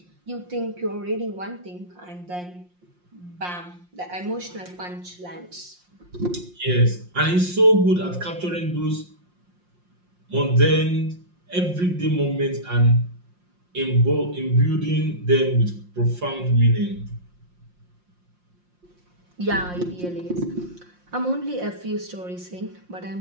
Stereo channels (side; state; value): left; late; 5.6 ms